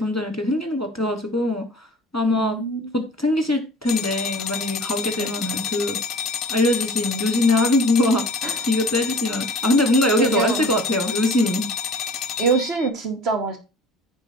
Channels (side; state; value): both; normal; correlation 0.45